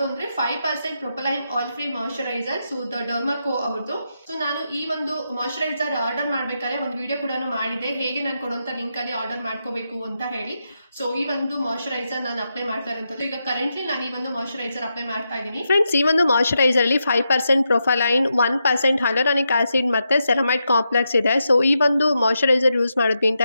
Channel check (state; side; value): inverted; both; correlation -0.85